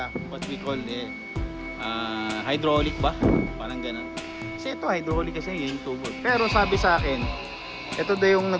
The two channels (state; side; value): identical; both; correlation 1.00